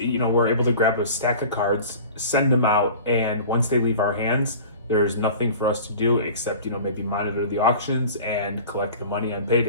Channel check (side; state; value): both; inverted; correlation -0.40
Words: know, we're able to grab a stack of cards, send them out, and once they leave our hands, there's nothing for us to do except, you know, maybe monitor the auctions and collect the money on